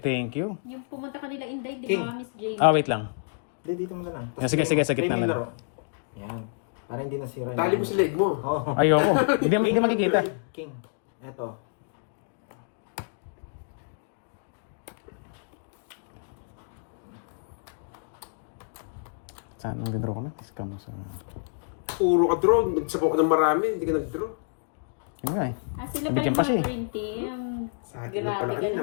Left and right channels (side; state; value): right; silent; digital silence